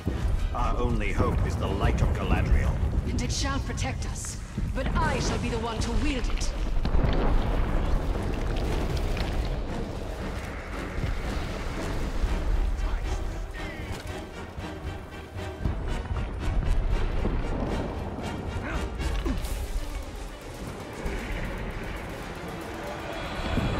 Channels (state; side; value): identical; both; correlation 1.00